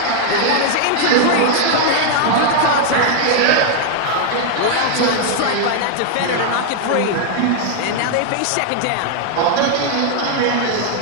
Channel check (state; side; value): different; both; correlation 0.00